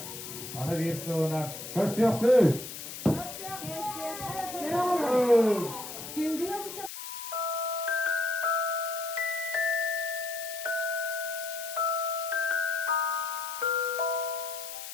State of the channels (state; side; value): noise; left; hiss, 9 dB below the sound